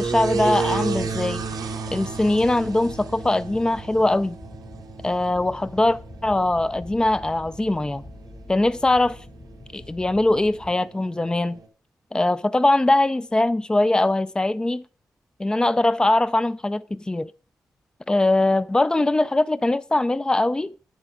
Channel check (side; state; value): both; normal; correlation 0.96